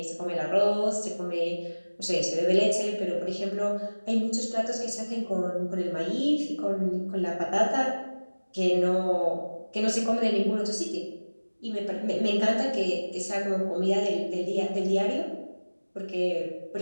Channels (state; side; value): inverted; both; correlation -1.00